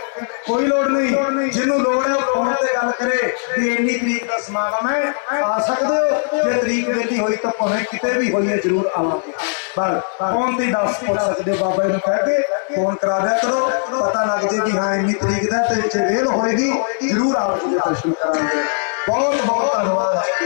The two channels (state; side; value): silent; right; 66 dB below the other